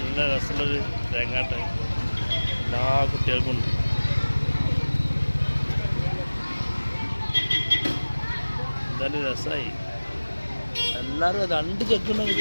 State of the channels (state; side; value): inverted; both; correlation -1.00